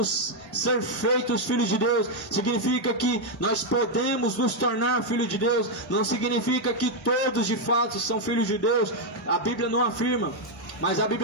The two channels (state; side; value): normal; both; correlation 0.01